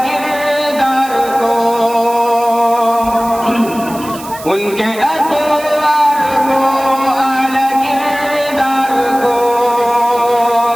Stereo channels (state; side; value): noise; right; hiss, 16 dB below the sound